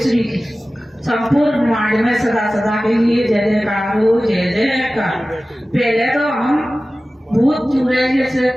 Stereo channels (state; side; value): normal; both; correlation 0.96